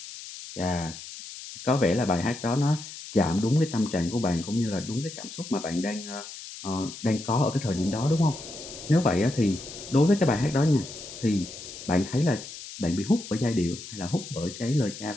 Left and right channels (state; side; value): noise; left; hiss, 12 dB below the sound